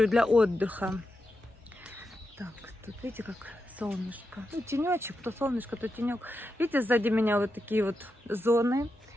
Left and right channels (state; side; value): normal; both; correlation 0.87